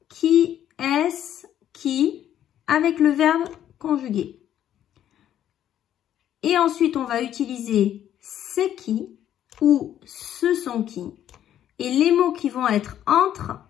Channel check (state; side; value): quieter; right; 10.9 dB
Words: Qui est-ce qui ?» avec le verbe conjugué. Et ensuite, on va utiliser « c'est qui » ou « ce sont qui ». Et les mots qui vont être entre,